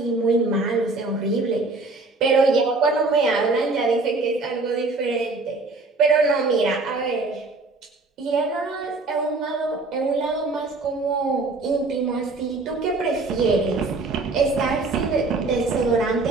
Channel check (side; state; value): left; quieter; 3.4 dB